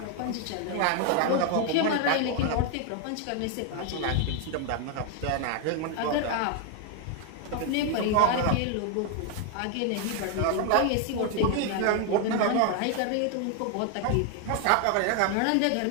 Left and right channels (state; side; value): different; both; correlation 0.01